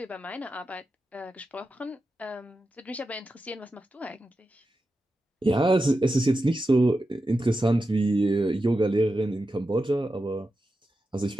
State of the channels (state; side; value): normal; both; correlation 0.90